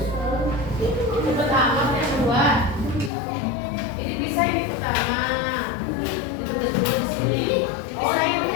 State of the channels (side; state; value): right; drops out; at 3.1 s